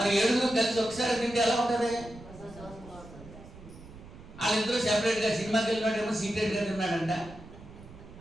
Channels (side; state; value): right; noise; rumble, 18 dB below the sound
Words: 7 కలిసి ఒకసారి తింటే ఎలా ఉంటుంది? వాళ్ళిద్దరూ సెపరేట్గా సినిమాకి వెళ్ళినాడేమో సీక్రెట్గా తిన్నాడంట,